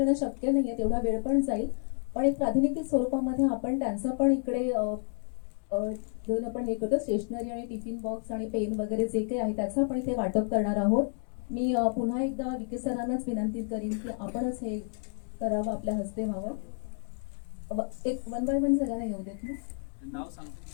शक्य नाहीये, तेवढा वेळ पण जाईल. पण एक प्रातिनिधिक स्वरूपामध्ये आपण त्यांचं पण इकडे घेऊन आपण हे करतो. स्टेशनरी आणि टिफिन बॉक्स आणि पेन वगैरे जे काही आहे त्याचं आपण इथे वाटप करणार आहोत. मी पुन्हा एकदा विके सरांनाच विनंती करीन की आपणच हे करावं, आपल्या हस्ते व्हावं. एक 1 बाय 1 सगळ्यांना येऊ देत ना. नाव सांगतो.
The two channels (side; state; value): right; silent; 58 dB below the other